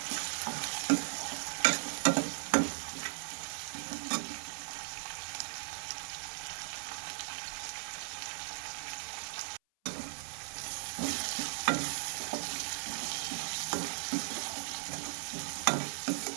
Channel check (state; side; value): silent; left; 53 dB below the other